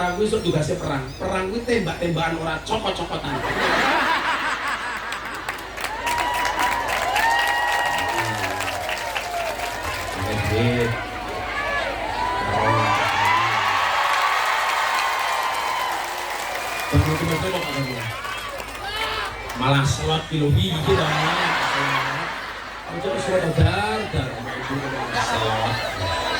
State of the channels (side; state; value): both; identical; correlation 1.00